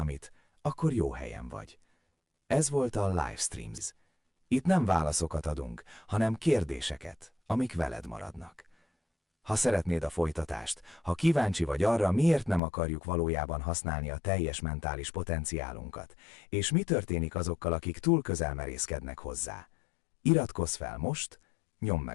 akkor jó helyen vagy. Ez volt a Livestreams. Itt nem válaszokat adunk, hanem kérdéseket, amik veled maradnak. Ha szeretnéd a folytatást, ha kíváncsi vagy arra, miért nem akarjuk valójában használni a teljes mentális potenciálunkat, és mi történik azokkal, akik túl közel merészkednek hozzá, iratkozz fel most, nyomd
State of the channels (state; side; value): drops out; right; at 12.6 s